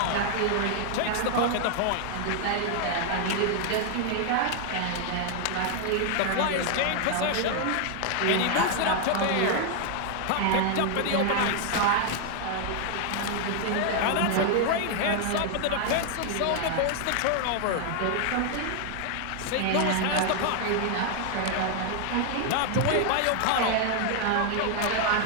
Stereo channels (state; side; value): different; both; correlation 0.00